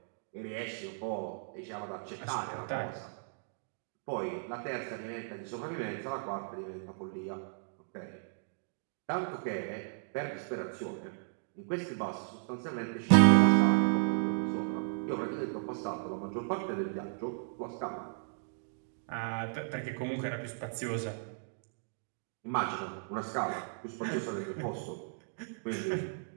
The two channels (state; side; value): silent; left; digital silence